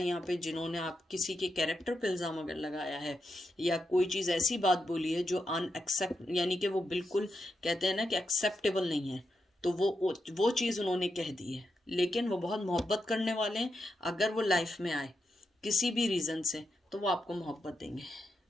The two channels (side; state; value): both; normal; correlation 0.85